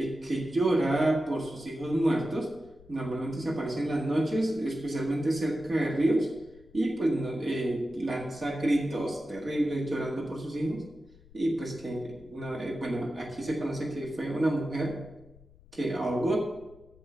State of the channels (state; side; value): noise; left; rumble, 25 dB below the sound